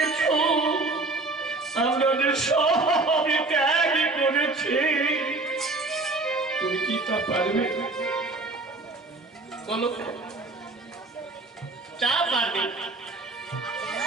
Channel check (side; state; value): left; quieter; 3.2 dB